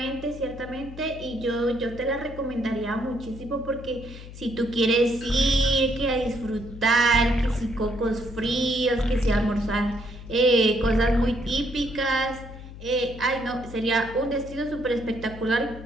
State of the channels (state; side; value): noise; left; hum, 14 dB below the sound